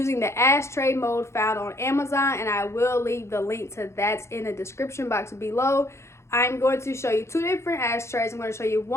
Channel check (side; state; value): right; late; 0.13 ms